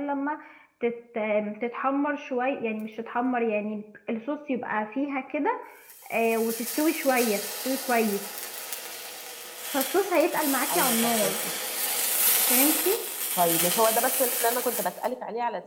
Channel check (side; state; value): both; identical; correlation 1.00